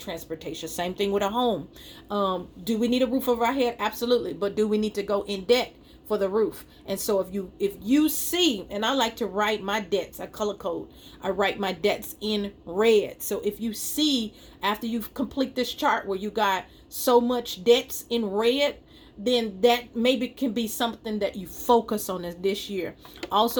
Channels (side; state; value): both; identical; correlation 1.00